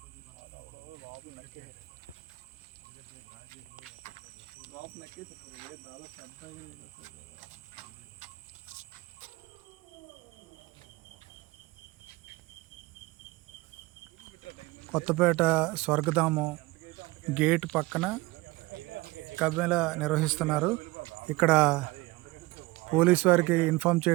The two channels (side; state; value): left; quieter; 21.8 dB